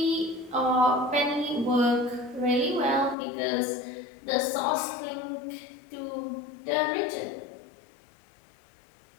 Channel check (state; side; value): drops out; right; at 3.2 s